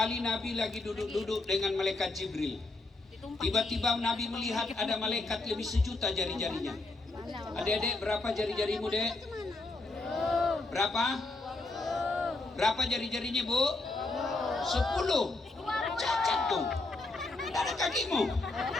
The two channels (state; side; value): quieter; right; 3.2 dB